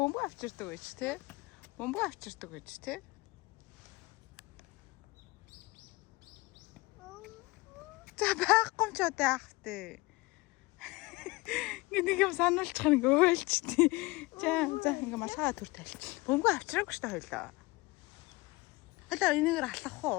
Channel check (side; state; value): right; quieter; 22.7 dB